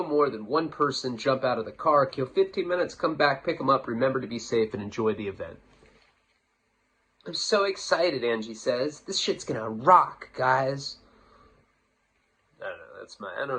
than one person jump out of the car, kill 15 minutes, come back, pick them up, remember to be safe, and enjoy the event. I'm so excited, Angie says. This shit's gonna rock, guys. I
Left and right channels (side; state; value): both; identical; correlation 1.00